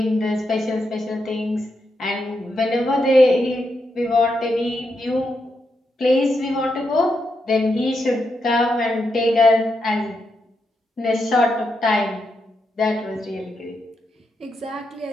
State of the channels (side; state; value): both; normal; correlation 0.83